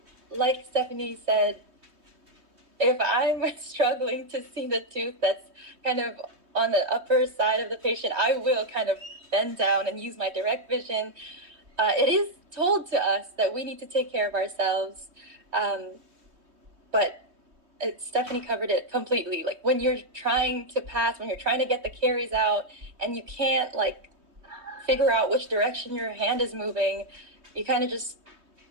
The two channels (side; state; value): left; late; 3.2 ms